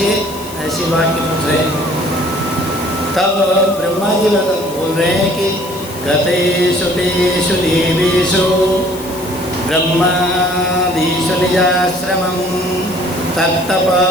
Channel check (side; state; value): left; noise; hiss, 16 dB below the sound